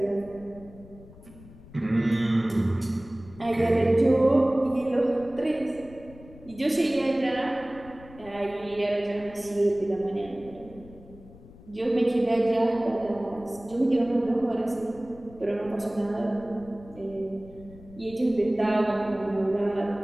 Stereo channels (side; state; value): left; noise; rumble, 20 dB below the sound